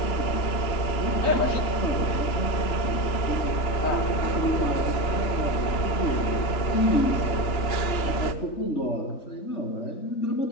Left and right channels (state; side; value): late; right; 2.9 ms